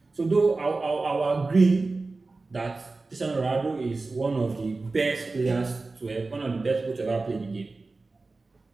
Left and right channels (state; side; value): quieter; left; 3.6 dB